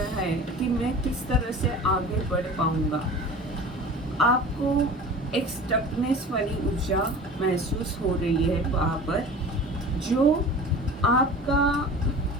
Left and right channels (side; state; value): both; normal; correlation 0.38